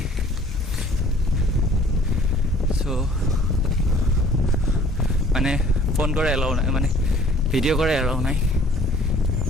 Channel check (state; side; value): normal; both; correlation 0.54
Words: চ' মানে ফোন কৰে এলাও নাই, মানে ভিডিঅ' কৰে এলাও নাই।